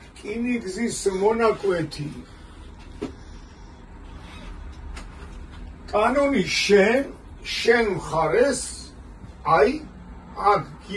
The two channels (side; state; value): both; identical; correlation 1.00